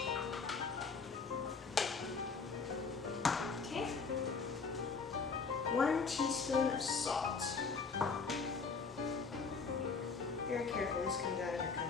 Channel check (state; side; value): quieter; right; 4.9 dB